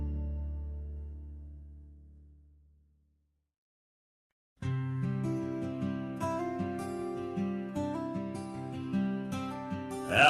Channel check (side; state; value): both; identical; correlation 1.00